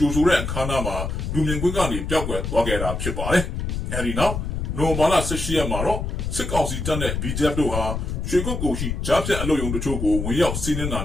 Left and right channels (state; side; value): noise; left; rumble, 3 dB below the sound